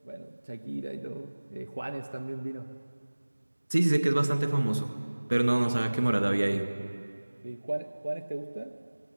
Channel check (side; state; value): both; inverted; correlation -1.00